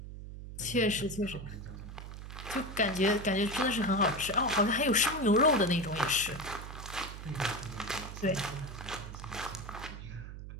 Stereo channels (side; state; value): right; noise; hum, 10 dB below the sound